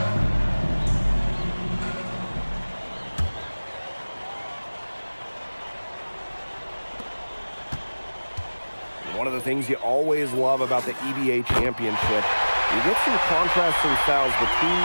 One of the things you always love about the EBA Championship, you get some contrasting styles between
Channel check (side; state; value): both; inverted; correlation -1.00